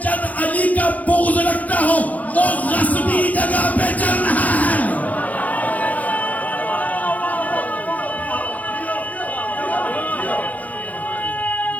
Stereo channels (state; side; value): late; right; 0.076 ms